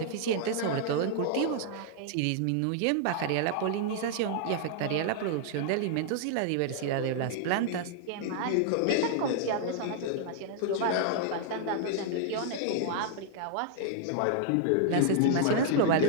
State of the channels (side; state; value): both; different; correlation 0.00